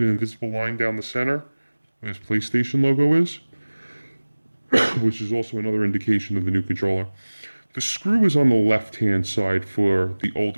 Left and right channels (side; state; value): both; inverted; correlation -1.00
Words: an invisible line down the center where this PlayStation logo is, which is also another indication of the new controller. The screw is on the left-hand side for the